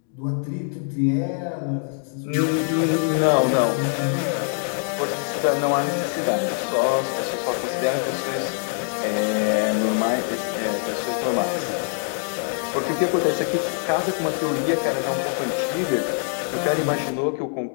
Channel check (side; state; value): right; silent; 63 dB below the other